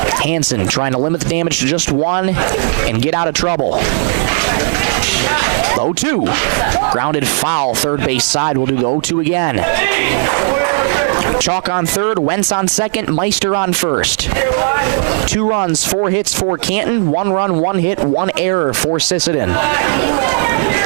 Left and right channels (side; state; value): left; silent; digital silence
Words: Hansen trying to limit the damage to just 1 and get out of trouble. 0-2. Grounded foul, third base side. We'll do the 0-2 again. Chalk on third, Wentz on second, Meister on first. 2 runs, 4 hits for Canton, 1 run, 1 hit, 1 error for Sisseton.